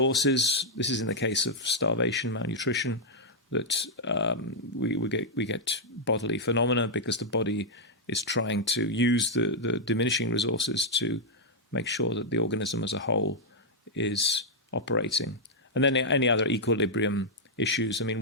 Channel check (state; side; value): normal; both; correlation -0.05